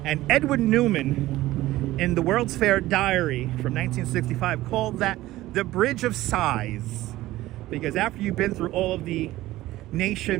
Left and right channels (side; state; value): left; quieter; 16.5 dB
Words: and Edwin Newman in the World's Fair Diary from 1965 called that the Bridge of Sighs, because after you've been through all of the